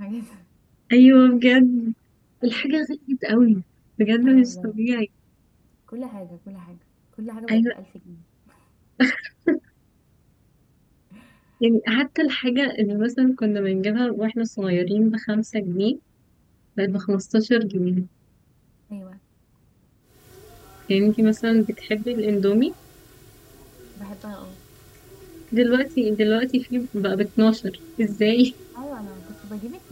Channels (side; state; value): both; identical; correlation 1.00